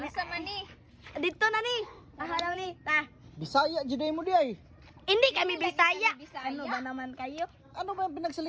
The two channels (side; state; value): both; identical; correlation 1.00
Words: man ni? Dito na ni. Ahalaw ni. Ta. Bisaya, juday mo di ay. Hindi kami Hindi Bisaya. kami Bisaya. Ano ba naman kayo? Ano ba yung